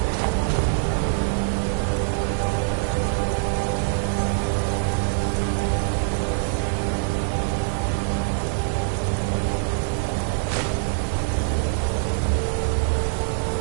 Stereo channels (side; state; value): left; silent; digital silence